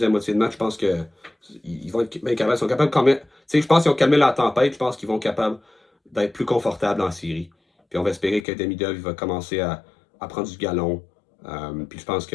moitié de match, je pense qu'ils vont être bien capables. Ils sont capables quand même. Tu sais, je pense qu'ils ont calmé la tempête. Je pense qu'ils vont être capables d'être plus confortables en série. Puis on va espérer que Demidov va commencer à prendre du galon. Puis je pense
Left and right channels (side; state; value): right; drops out; at 8.5 s